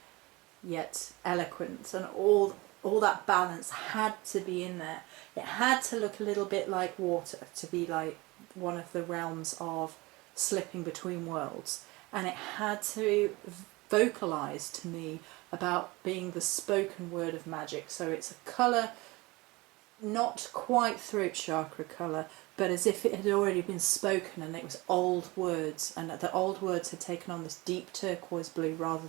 yet eloquent, and all that balance had to be in there. It had to look a little bit like water, to be like one of the realms of slipping between worlds, and it had to vocalize to me about being the spoken word of magic. So it's a colour not quite throat chakra colour, but as if it had already been spoken, and it was old words, and the old words had taken on this deep turquoise blue rather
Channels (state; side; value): quieter; left; 22.9 dB